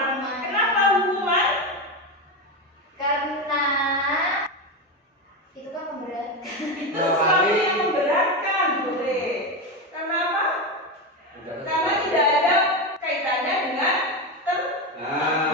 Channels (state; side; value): normal; both; correlation 0.15